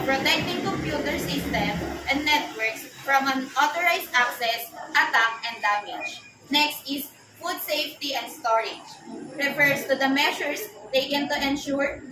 protecting computer systems and networks from unauthorized access, attack, and damage. Next is food safety and storage. Refers to the measures taken to ensure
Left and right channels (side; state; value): both; identical; correlation 1.00